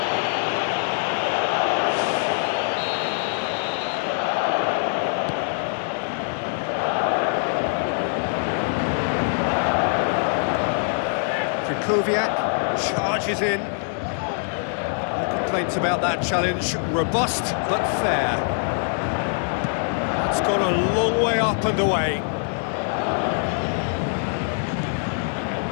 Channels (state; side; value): silent; right; 63 dB below the other